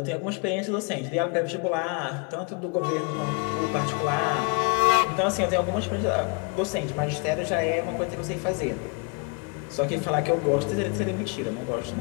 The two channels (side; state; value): right; quieter; 33.2 dB